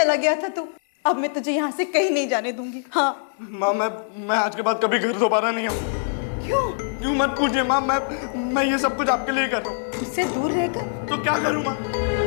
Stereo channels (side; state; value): right; silent; 60 dB below the other